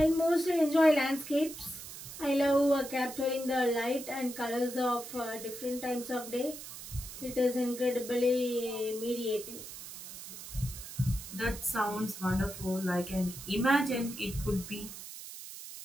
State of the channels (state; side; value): noise; right; hiss, 12 dB below the sound